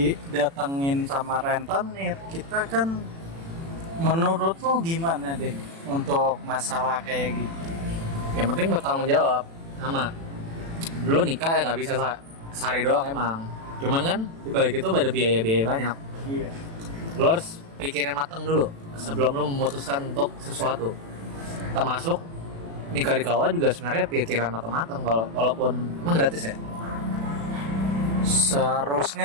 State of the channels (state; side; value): late; left; 36 ms